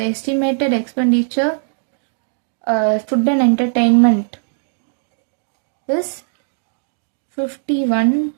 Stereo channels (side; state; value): left; silent; digital silence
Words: estimated expenditure food and entertainment is